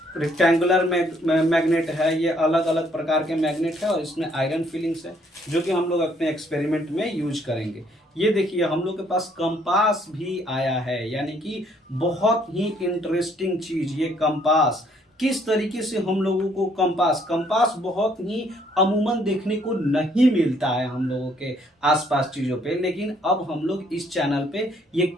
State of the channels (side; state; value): both; normal; correlation 0.66